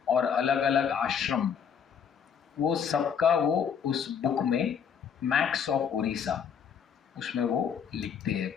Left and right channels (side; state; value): right; quieter; 7.4 dB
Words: और अलग अलग आश्रम, वो सबका वो उस बुक में मैप्स ऑफ उड़ीसा उसमें वो लिखते हैं